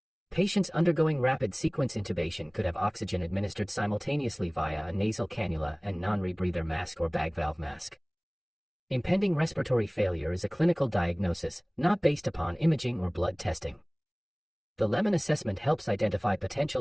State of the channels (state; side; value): identical; both; correlation 1.00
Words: Patients undergoing rapid sequence intubation could have oxygen administered simultaneously via a nasal cannula and non-rebreather mask or bag valve mask. Impending respiratory failure is a clinical diagnosis, not based upon imaging or blood testing. The lemon assessment helps identify